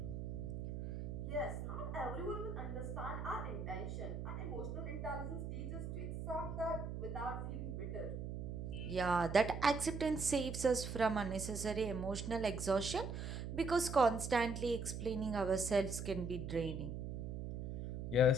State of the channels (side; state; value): right; noise; hum, 5 dB below the sound